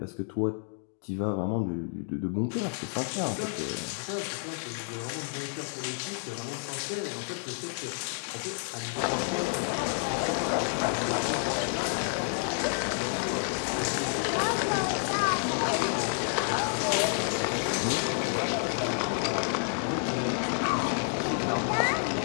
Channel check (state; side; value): silent; right; 58 dB below the other